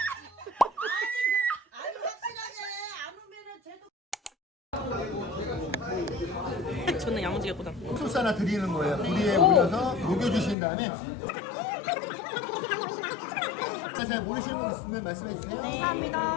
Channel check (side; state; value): right; drops out; at 10.6 s